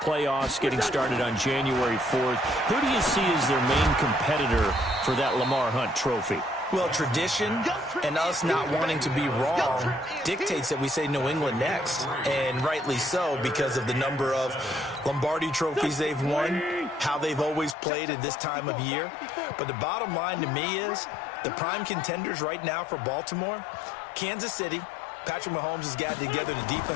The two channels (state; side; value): drops out; right; at 17.8 s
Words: getting started on January 4th. Who do you see as their main competitor for that Lamar Hunt trophy? Well, tradition and us not wanting to be wrong dictates that we say New England next, and rightly so because of the number of Lombardi trophies they've won, how they've always played at this time of year. But the bottom line to me is the prime contenders right now for Baltimore, Kansas City. Patrick Mahomes has gotten together. The